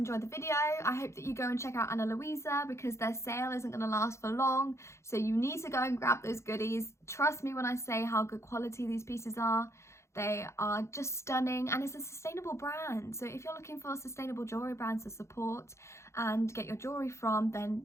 the video. I hope that you go and check out Ana Luisa, because their sale isn't going to last for long. So you need to go and grab those goodies. Trust me when I say how good quality these pieces are. They are just stunning, and it's a sustainable brand. So if you're looking for sustainable jewelry brands to support and get your jewelry from,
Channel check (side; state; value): right; late; 0.14 ms